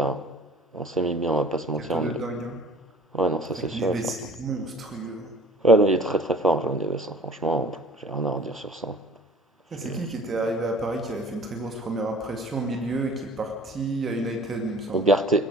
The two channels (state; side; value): normal; both; correlation 0.48